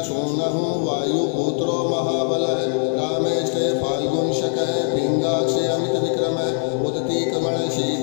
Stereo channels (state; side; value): silent; right; digital silence